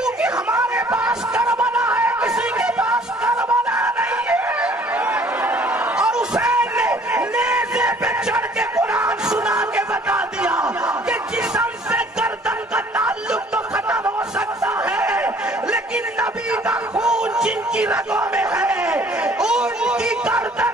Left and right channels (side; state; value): both; normal; correlation 0.56